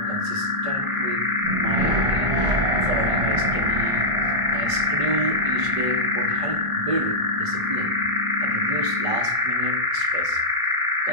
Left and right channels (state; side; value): late; left; 1.5 ms